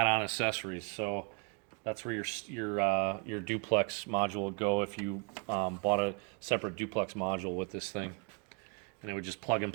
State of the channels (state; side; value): quieter; left; 35.5 dB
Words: accessories. So that's where your duplex module would go if you bought a separate duplex module with this thing, and it would just plug and